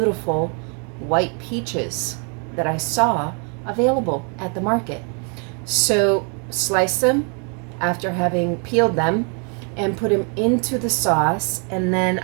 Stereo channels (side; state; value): left; quieter; 37.9 dB